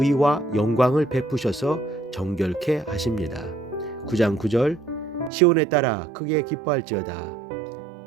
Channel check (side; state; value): left; drops out; at 5.3 s